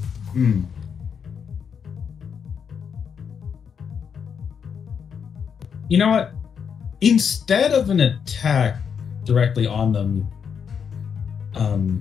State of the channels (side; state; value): right; quieter; 7.0 dB